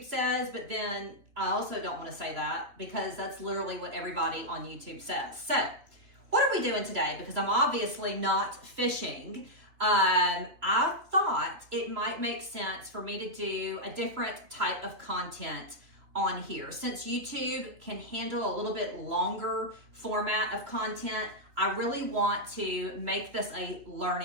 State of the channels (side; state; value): left; late; 3.2 ms